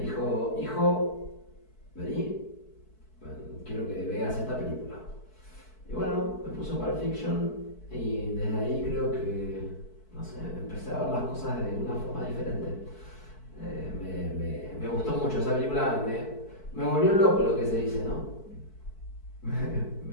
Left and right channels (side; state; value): right; late; 4.6 ms